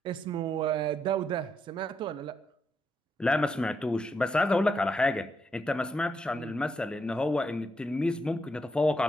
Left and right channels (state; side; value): normal; both; correlation 0.80